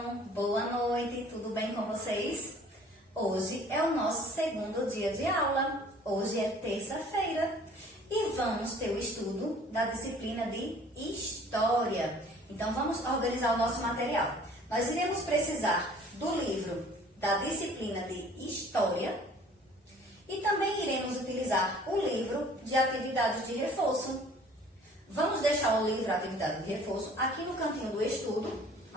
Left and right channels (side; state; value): both; normal; correlation 0.52